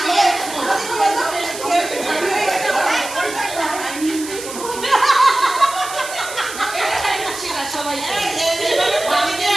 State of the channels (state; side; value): noise; right; hiss, 11 dB below the sound